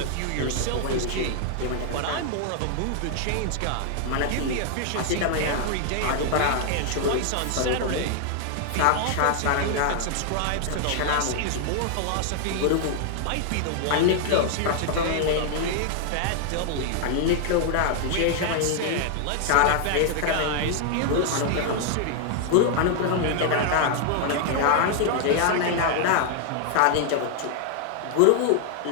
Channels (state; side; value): different; both; correlation 0.00